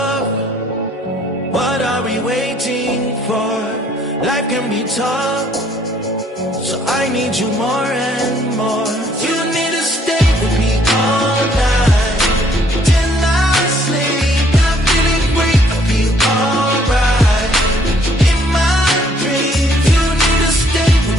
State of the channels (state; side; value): normal; both; correlation 0.64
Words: What are we waiting for? Life can be tough, so I need you more and more. You need to stay with me all night till I sleep. I'm feeling great, I'll be alright. In my dreams, you need to stay